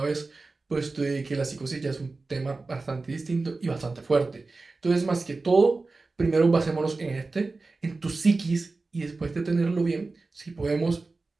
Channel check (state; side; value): quieter; left; 3.6 dB